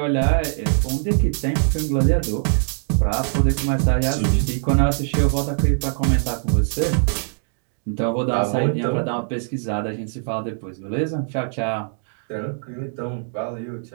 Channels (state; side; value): silent; left; digital silence